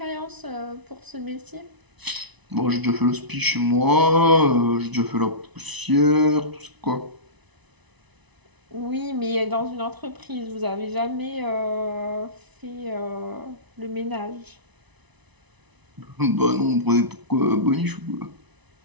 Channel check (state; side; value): late; left; 1.0 ms